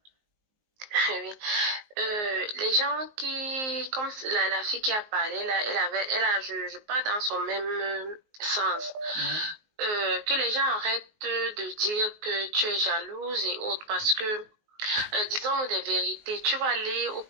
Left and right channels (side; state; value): left; late; 19 ms